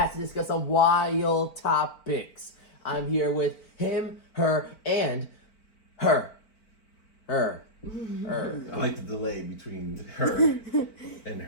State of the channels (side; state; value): right; late; 4.4 ms